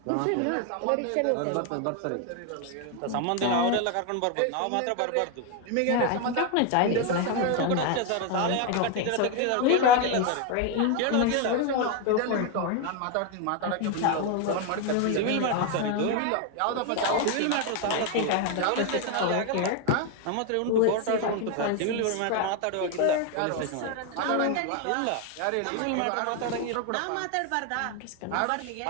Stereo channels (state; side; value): different; both; correlation 0.01